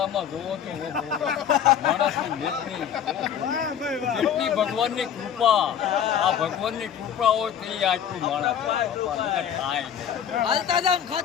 જોવો તો માણસની નેતની કેટલી ભગવાનની કૃપા. આ ભગવાનની કૃપા હોય તો એ આટલું માણસ થાય. હાલતા જાવ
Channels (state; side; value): quieter; right; 8.9 dB